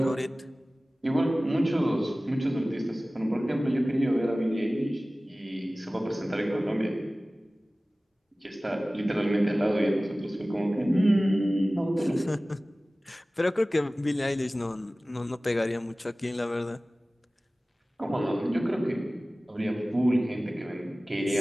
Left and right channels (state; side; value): normal; both; correlation 0.97